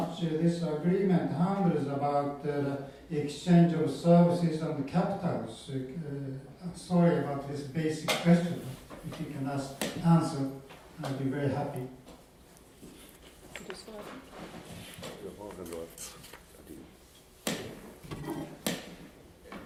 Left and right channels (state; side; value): identical; both; correlation 1.00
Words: this agreement handles about exchange of services and capitals. Sorry about this basic question. If you can answer, I'd be very happy.